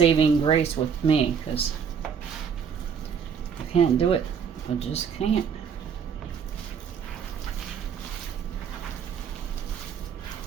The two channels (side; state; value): left; quieter; 7.0 dB